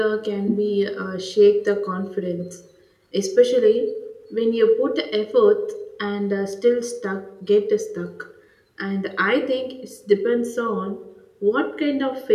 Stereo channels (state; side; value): identical; both; correlation 1.00